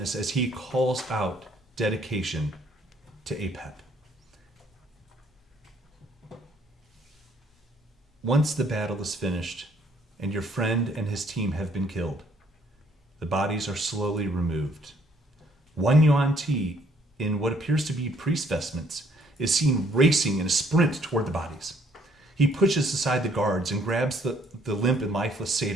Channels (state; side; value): normal; both; correlation 0.65